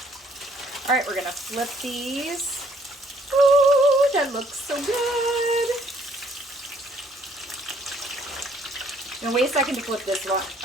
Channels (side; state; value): both; normal; correlation 0.64